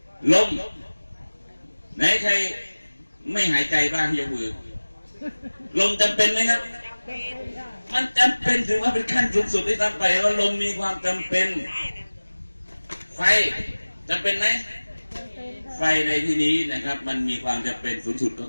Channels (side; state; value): both; inverted; correlation -1.00